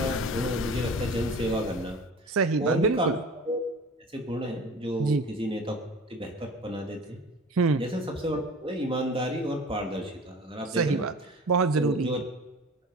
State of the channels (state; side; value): normal; both; correlation 0.39